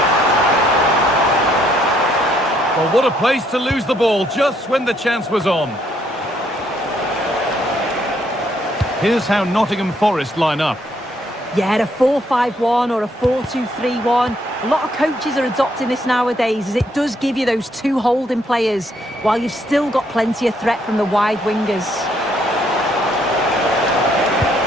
Well, what a place to lose the ball just when the chance was on. Here's how Nottingham Forest line up. Yeah, a 4-5-1 or a 4-2-3-1. A lot of coaches are adopting this nowadays, as it does give you those two holding players, while you've still got plenty of threat from the wide wingers.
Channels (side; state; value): both; normal; correlation 0.70